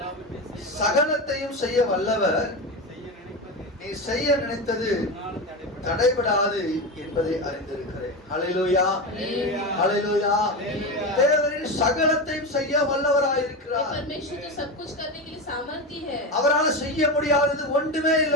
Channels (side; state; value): both; normal; correlation 0.19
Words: சகலத்தையும் செய்ய வல்லவர், நீ செய்ய நினைத்தது தடைபடாது என்பதை அறிந்திருக்கிறேன். ஹalleluya ஹalleluya தேவரீர் சகலத்தையும் செய்ய வல்லவராய் இருக்கிறார். परमेश्वर तो सब कुछ करने के लिए सामर्थ्य है அவரால் செய்ய முடியாதது ஒன்றுமே